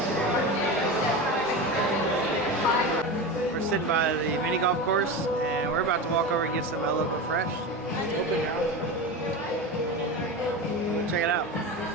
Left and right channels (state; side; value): normal; both; correlation 0.24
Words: We're sitting by the mini golf course, and we're about to walk over and get some El Loco Fresh. It's open now. Check it out.